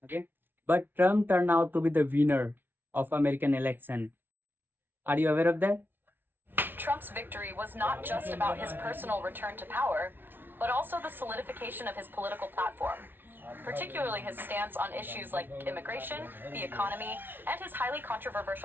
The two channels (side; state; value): left; late; 0.10 ms